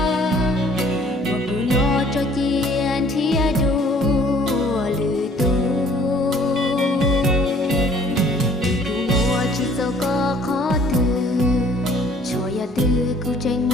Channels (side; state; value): both; normal; correlation 0.57